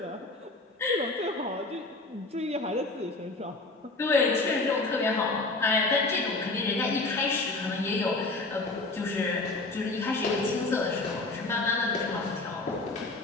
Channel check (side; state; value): right; quieter; 3.2 dB